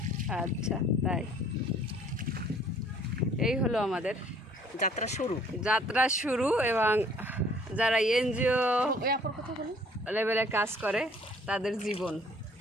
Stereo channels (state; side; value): normal; both; correlation 0.57